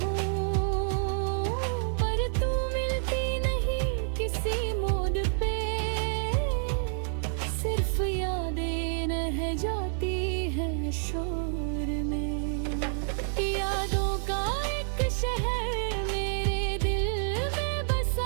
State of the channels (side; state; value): left; silent; digital silence